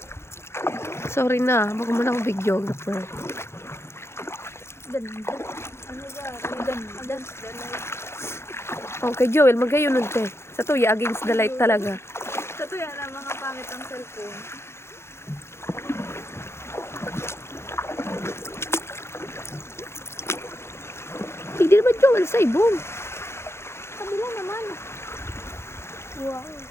Sorry na, baka mo na akong videographer. Okay, Joel, magayon nun, te. Sa tuya, against the light talaga. Sa tuya na mga pangit ang cellphone. Hindi naman, Joel, sa ibong. Kabila naman. Wow.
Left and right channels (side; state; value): right; late; 0.12 ms